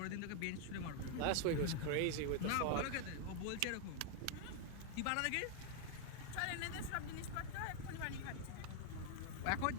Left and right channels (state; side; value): different; both; correlation 0.00